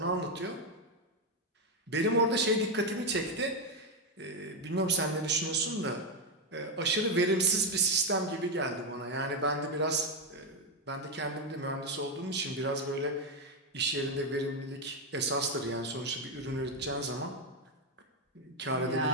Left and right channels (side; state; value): both; normal; correlation 0.06